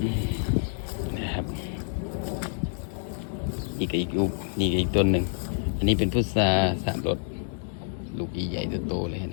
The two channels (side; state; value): right; silent; digital silence